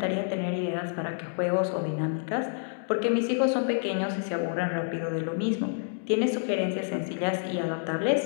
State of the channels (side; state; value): right; silent; digital silence